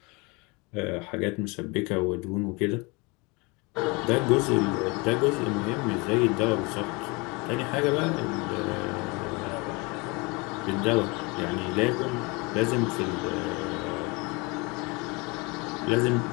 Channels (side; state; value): right; quieter; 27.5 dB